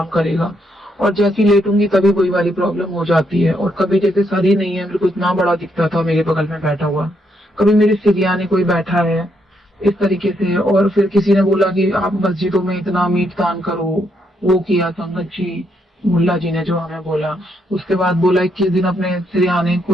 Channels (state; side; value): normal; both; correlation 0.76